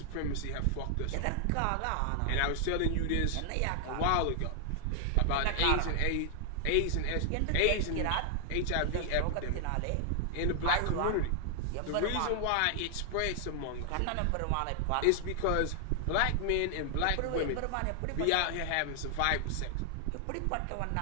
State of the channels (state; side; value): different; both; correlation 0.00